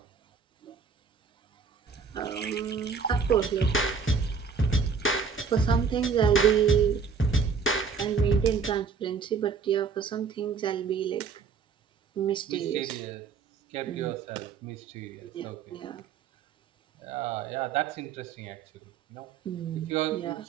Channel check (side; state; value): left; quieter; 5.6 dB